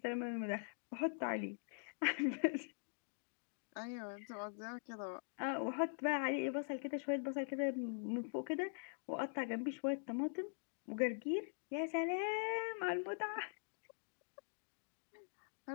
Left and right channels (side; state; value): right; silent; digital silence